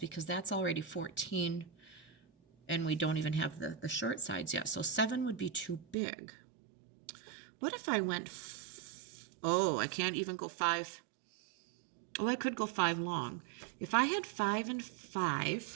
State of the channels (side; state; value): left; drops out; at 6.0 s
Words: that's already 14, and we don't even have the short sides yet. So 7 would be too big. What if I went, I can't even go 5. I could go 5 long. If I had 5 and